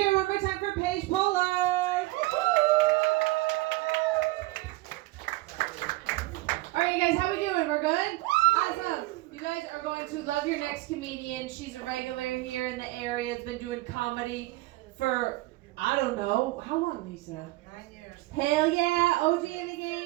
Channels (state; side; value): quieter; left; 20.2 dB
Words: it one more time for Paige Pollard. All right, you guys, how we doing? We're good? Awesome. You guys are going to love your next comedian. She's a regular here in the area. Has been doing comedy for, I don't know, how long, Lisa? 9 years. Hell yeah, OG in the